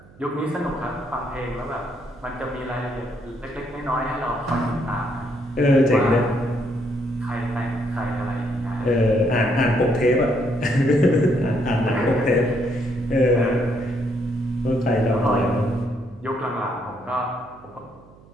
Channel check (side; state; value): right; noise; hum, 25 dB below the sound